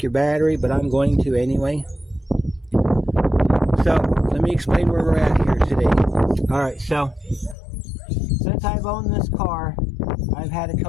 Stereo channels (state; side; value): drops out; right; at 7.6 s